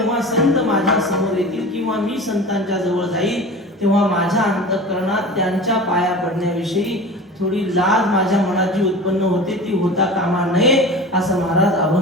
संत माझ्या समोर येतील किंवा मी संतांच्या जवळ जाईल तेव्हा माझ्या अंतःकरणात त्यांच्या पाया पडण्याविषयी थोडी लाज माझ्या मनात जी उत्पन्न होते ती होता कामा नये, असं महाराज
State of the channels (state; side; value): normal; both; correlation 0.35